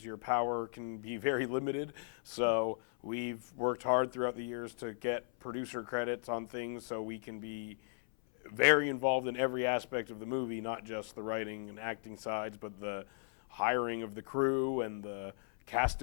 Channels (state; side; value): silent; right; 53 dB below the other